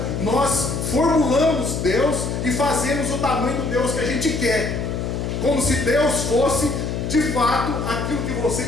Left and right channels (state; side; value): noise; left; hum, 3 dB below the sound